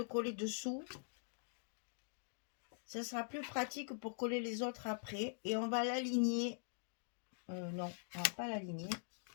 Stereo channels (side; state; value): right; silent; digital silence